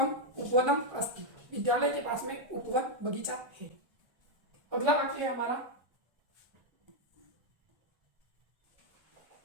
उपवनम अस्ति। विद्यालय के पास में उपवन बगीचा है। अगला वाक्य है हमारा,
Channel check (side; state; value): left; late; 1.3 ms